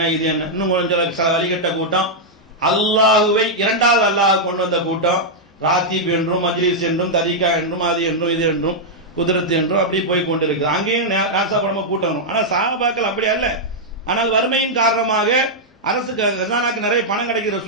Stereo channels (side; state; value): both; normal; correlation -0.05